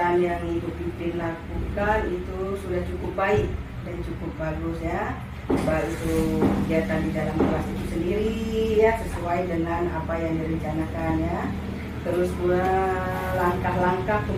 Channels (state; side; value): identical; both; correlation 1.00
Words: yang Ibu Pipin lakukan itu sudah cukup baik dan cukup bagus ya. Baik itu kegiatan di dalam kelas itu sendiri ya, sesuai dengan apa yang direncanakan ya. Terus pula langkah-langkah